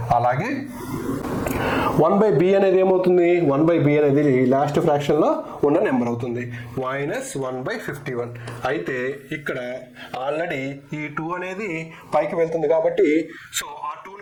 అలాగే 1/b అనేది ఏమవుతుంది, 1/b అనేది లాస్ట్ ఫ్రాక్షన్లో ఉన్న నెంబర్ అవుతుంది, -1/51. అయితే ఇక్కడ ఆల్రెడీ ఈ 2 అనేది పైకి వెళ్తుంది కాబట్టి సో ఆ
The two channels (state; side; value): identical; both; correlation 1.00